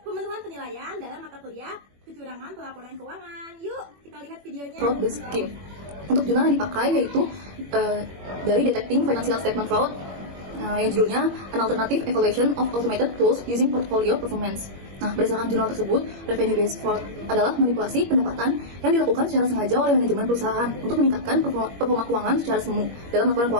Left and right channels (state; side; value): late; left; 21 ms